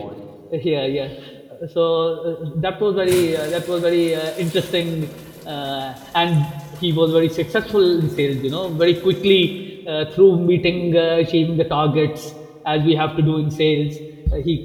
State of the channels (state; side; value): identical; both; correlation 1.00